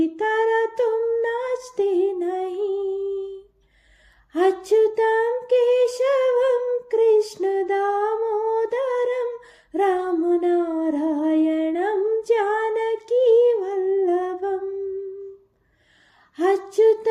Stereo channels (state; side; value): identical; both; correlation 1.00